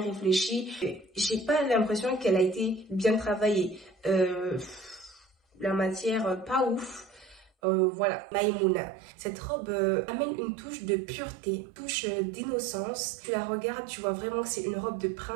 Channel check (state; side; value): drops out; left; at 7.5 s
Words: J'ai pas l'impression qu'elle a été bien travaillée. La matière, pas ouf. Voilà, Maïmouna. Cette robe amène une touche de pureté, une touche d'innocence. Tu la regardes, tu vois vraiment que c'est une robe de